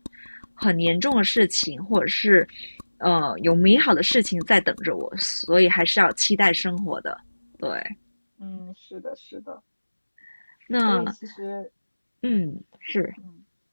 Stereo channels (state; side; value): inverted; both; correlation -1.00